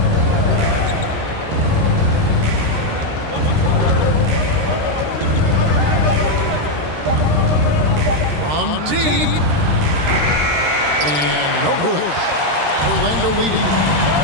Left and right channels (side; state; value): left; late; 13 ms